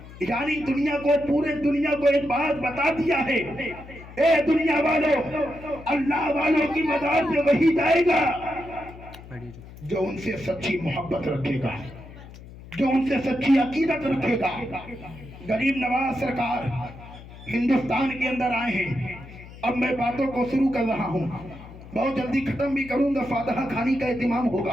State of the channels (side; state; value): left; noise; hum, 17 dB below the sound